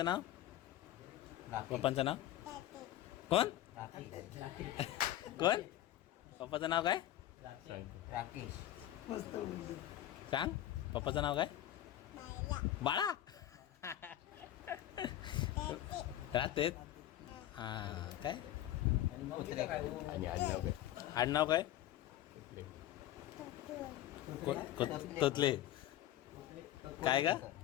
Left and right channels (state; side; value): quieter; right; 13.1 dB